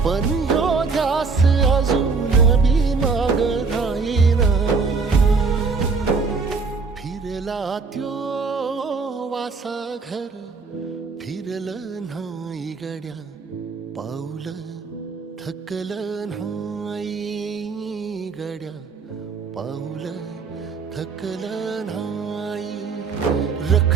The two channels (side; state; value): left; quieter; 4.7 dB